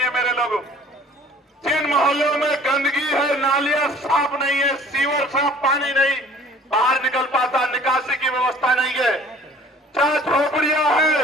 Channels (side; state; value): both; normal; correlation 0.51